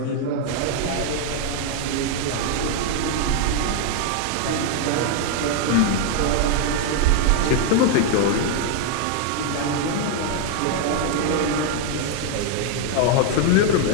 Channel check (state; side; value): different; both; correlation 0.00